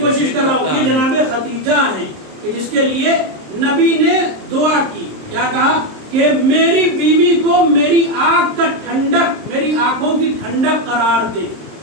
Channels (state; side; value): late; left; 26 ms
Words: کر رہا ہوں. یہ جناب خدیجہ ہیں کہ جس کے لیے نبی نے دعا کی. کیا کہا کہ میری بیوی کو میری آنکھ کا ٹھنڈک، میری آنکھوں کی ٹھنڈک قرار دے.